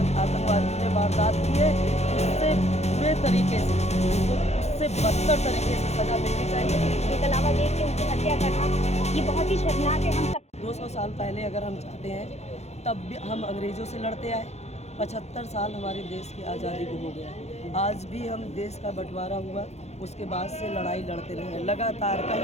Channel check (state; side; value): late; right; 0.31 ms